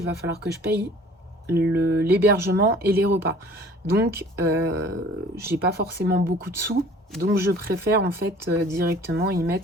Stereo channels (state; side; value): normal; both; correlation 0.50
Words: va falloir que je paye l'hébergement et les repas. Donc, j'ai pas forcément beaucoup de sous, donc je préfère en fait directement y